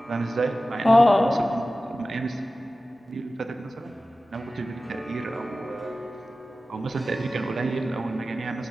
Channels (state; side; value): normal; both; correlation 0.95